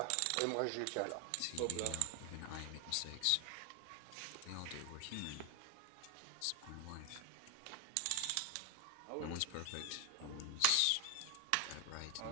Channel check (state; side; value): different; both; correlation 0.01